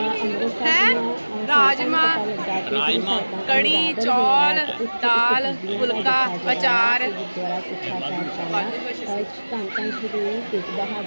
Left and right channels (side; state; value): both; inverted; correlation -1.00